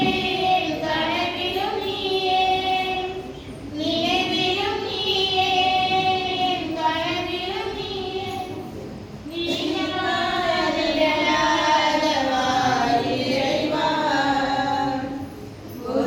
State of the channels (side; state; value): both; identical; correlation 1.00